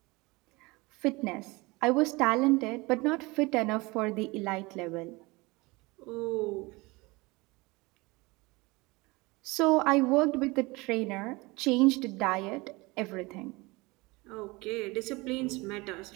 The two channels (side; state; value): left; quieter; 23.8 dB